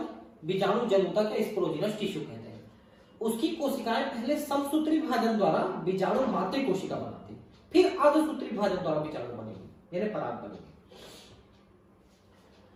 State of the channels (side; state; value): both; identical; correlation 1.00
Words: बीजाणु जन ऊतक या स्पोरोजिनस टिश्यू कहते हैं। उसकी कोशिकाएं पहले समसूत्री विभाजन द्वारा बीजाणु मातृ कोशिका बनाती, फिर अर्धसूत्री विभाजन द्वारा बीजाणु बनेगी, यानी पराग बनेगी।